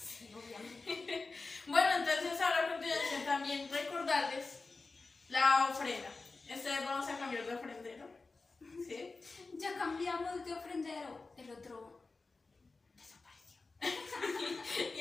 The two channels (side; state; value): right; quieter; 3.8 dB